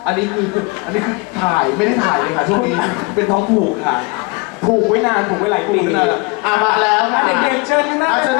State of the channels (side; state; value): right; quieter; 28.0 dB